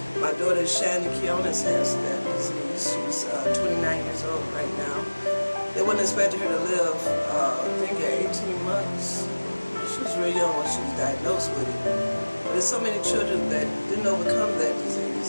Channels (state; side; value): inverted; both; correlation -1.00